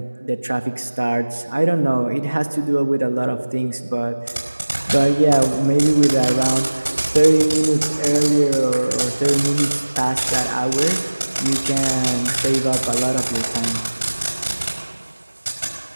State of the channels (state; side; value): inverted; both; correlation -1.00